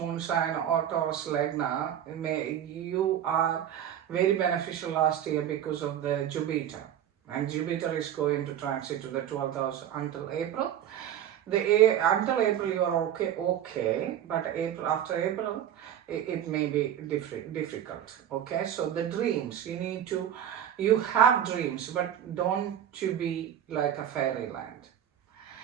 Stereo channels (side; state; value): left; quieter; 10.3 dB